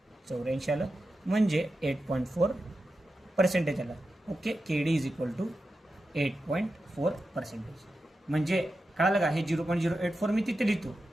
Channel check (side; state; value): both; normal; correlation 0.90